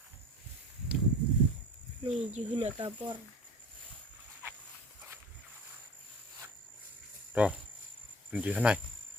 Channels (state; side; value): normal; both; correlation 0.40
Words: Nih juhuna kapor. Rồi, mình chỉ thế này.